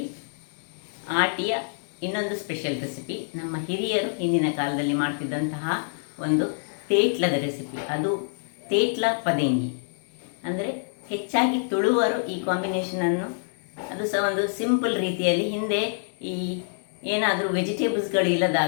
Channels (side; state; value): right; silent; digital silence